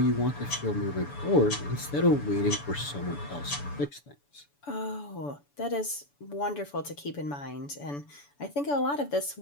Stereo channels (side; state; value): right; late; 7.0 ms